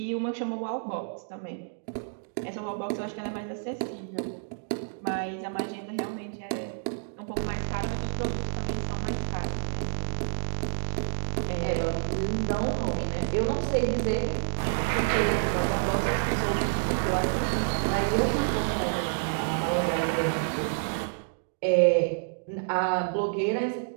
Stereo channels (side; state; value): left; silent; digital silence